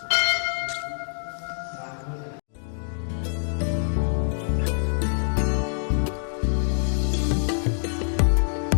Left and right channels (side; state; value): right; silent; digital silence